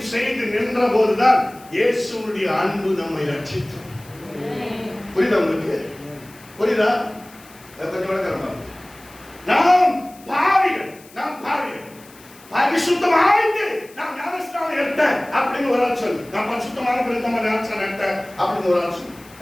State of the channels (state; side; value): noise; left; hiss, 24 dB below the sound